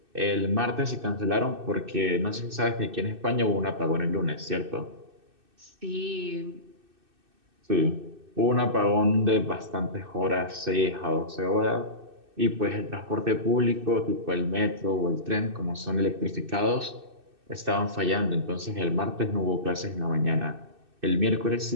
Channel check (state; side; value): late; left; 2.6 ms